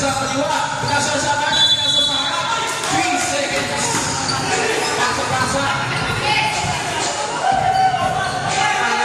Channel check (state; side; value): identical; both; correlation 1.00